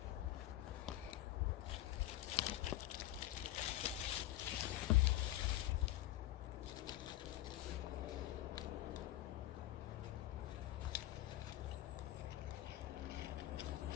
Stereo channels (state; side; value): quieter; right; 15.3 dB